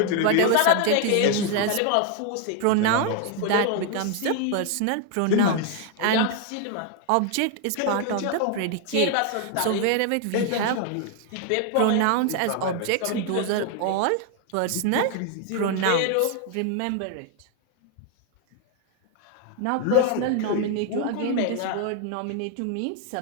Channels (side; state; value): both; different; correlation 0.00